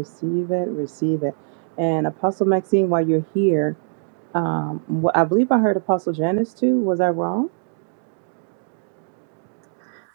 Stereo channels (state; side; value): silent; left; 60 dB below the other